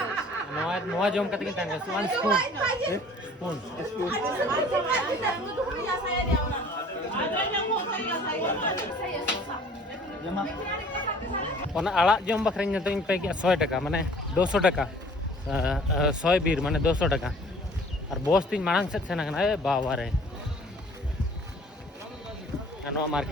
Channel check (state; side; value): normal; both; correlation 0.51